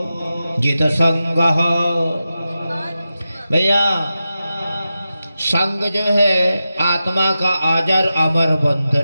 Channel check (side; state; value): both; inverted; correlation -0.91